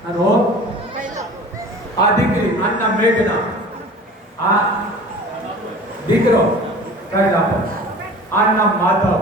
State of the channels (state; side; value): normal; both; correlation 0.41